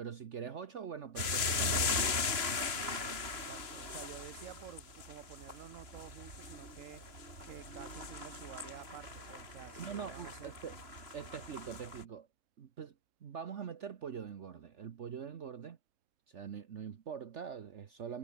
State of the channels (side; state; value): left; late; 3.7 ms